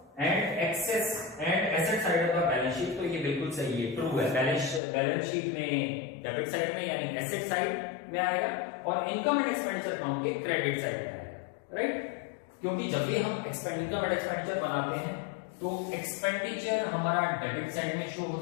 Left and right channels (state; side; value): drops out; right; at 4.8 s